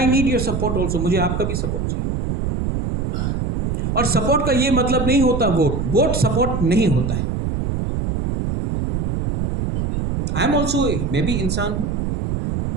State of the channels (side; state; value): right; noise; rumble, 1 dB below the sound